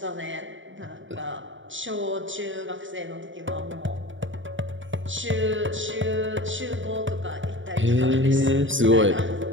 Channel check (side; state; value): left; late; 0.56 ms